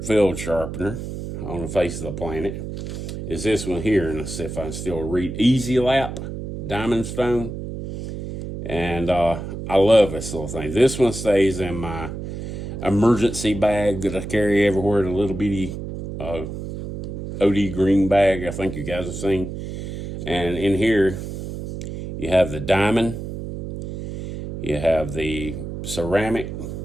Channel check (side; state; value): right; noise; hum, 7 dB below the sound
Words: field sharpener on the face of the planet is this one here, and let's see if I can still read. Easy Lap Diamond Stone, and I love this little thing. This one stays in my emergency bag that I carry everywhere, the little bitty OD green bag I think you guys have seen. And in here, you have the diamond, you have the ceramic.